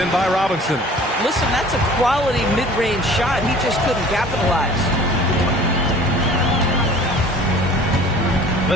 by Robinson. Listen, that's a quality mid-range shot. He just couldn't capitalize.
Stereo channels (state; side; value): normal; both; correlation 0.47